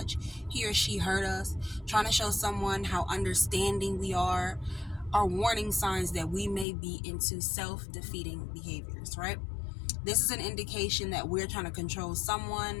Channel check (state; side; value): drops out; right; at 6.7 s